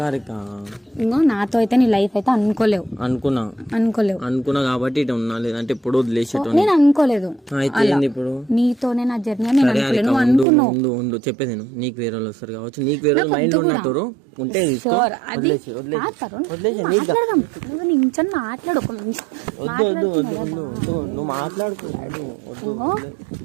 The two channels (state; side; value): drops out; left; at 10.5 s